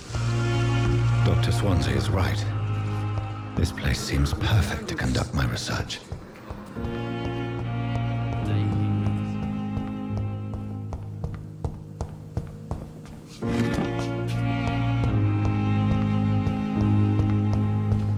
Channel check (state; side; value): identical; both; correlation 1.00